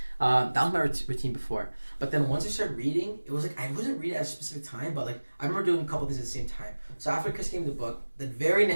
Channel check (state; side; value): inverted; both; correlation -1.00